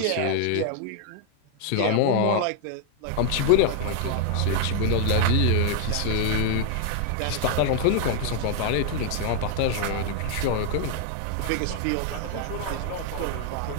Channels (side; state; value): both; different; correlation 0.00